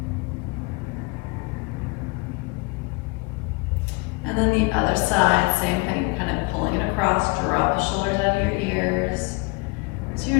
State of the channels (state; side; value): quieter; right; 27.9 dB